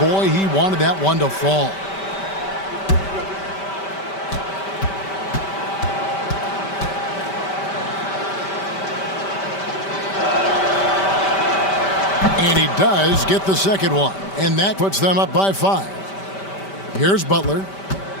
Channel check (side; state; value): right; late; 5.1 ms